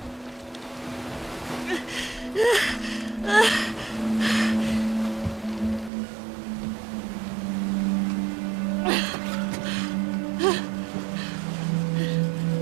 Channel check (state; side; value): drops out; left; at 5.9 s